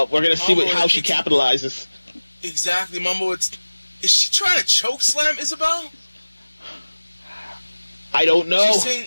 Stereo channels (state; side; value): inverted; both; correlation -1.00